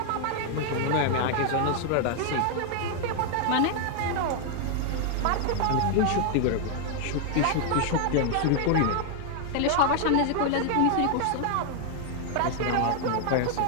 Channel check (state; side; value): different; both; correlation 0.00